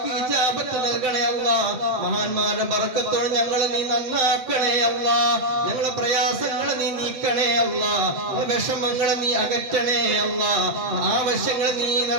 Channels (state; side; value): late; left; 7.8 ms